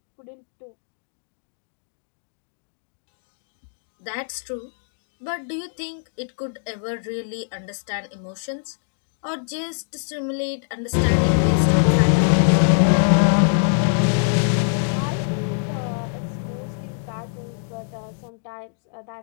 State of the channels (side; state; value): right; silent; digital silence